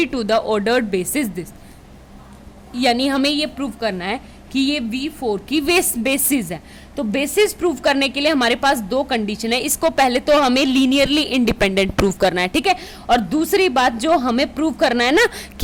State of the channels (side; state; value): both; identical; correlation 1.00